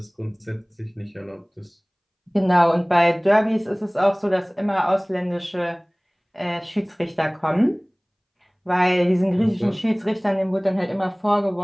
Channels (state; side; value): identical; both; correlation 1.00